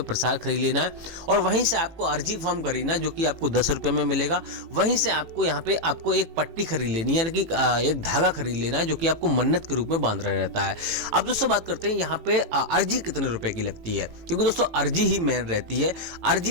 प्रसाद खरीद लेना है, और वहीं से आपको अर्जी फॉर्म खरीदना है जो कि आपको 10 रुपए में मिलेगा। वहीं से आपको यहाँ पे आपको एक पट्टी खरीद लेनी है, यानी कि एक धागा खरीद लेना है जो कि आपको मन्नत के रूप में बांध रहा रहता है। अब दोस्तों बात करते हैं यहाँ पे अर्जी कितने रुपए की लगती है, क्योंकि दोस्तों अर्जी ही मेन रहती है।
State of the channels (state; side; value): late; left; 18 ms